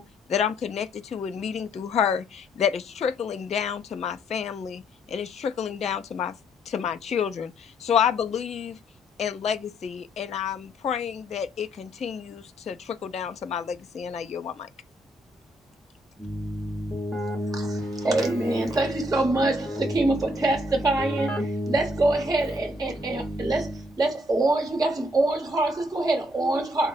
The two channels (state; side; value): normal; both; correlation 0.69